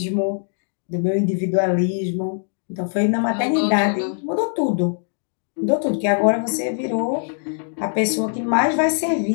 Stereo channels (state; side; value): silent; right; 58 dB below the other